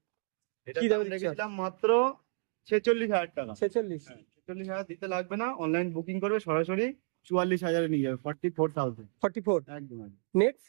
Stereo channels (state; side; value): silent; left; 57 dB below the other